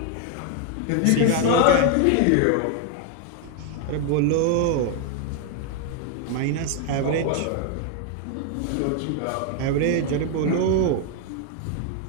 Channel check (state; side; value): different; both; correlation 0.00